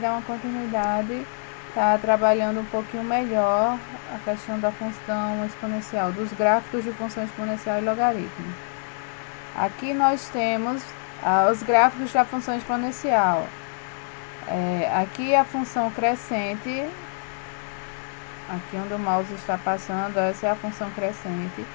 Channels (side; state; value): right; silent; 59 dB below the other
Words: uma continuidade, tá trabalhando um pouquinho melhor a questão da função exponencial, dos gráficos de função exponencial e logaritmo. Aqui nós temos os gráficos da função exponencial. Aqui a função crescente, aqui onde o mouse está passando, essa é a função crescente.